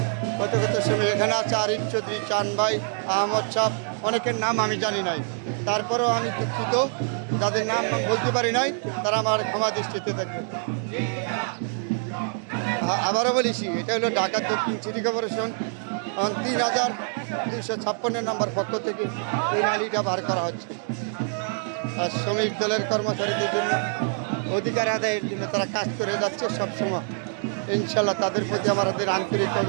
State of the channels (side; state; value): left; silent; 60 dB below the other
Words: কত কত শ্রমিক এখানে আছে। আরিফ চৌধুরী, চান ভাই, আহমদ সাহ, অনেকের নাম আমি জানি নাই। তারপরেও আমি দুঃখিত, যাদের নাম বলতে পারি নাই তারা আমার ক্ষমা দৃষ্টিতে থাকবে। আবারও বলেছি, এটা হলো ঢাকা দক্ষিণ সিটি কর্পোরেশন 3256 নাম্বার পক্ষ থেকে এই র্যালিটা বার করা হচ্ছে। আর শ্রমিক দলের কর্মচারীদের জন্য অধিকার আদায়ের জন্য তারা কাজ করে যাচ্ছে সবসময়। ইনশাল্লাহ তাদের প্রতি আমাদের আন্তরিক